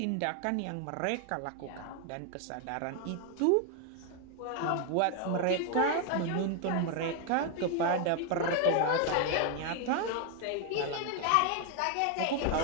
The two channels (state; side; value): different; both; correlation 0.01